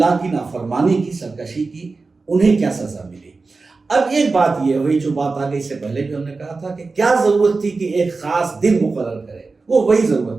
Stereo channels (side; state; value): left; quieter; 4.0 dB